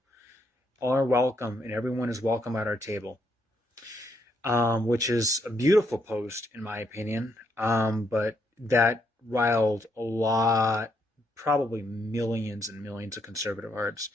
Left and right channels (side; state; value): both; normal; correlation 0.76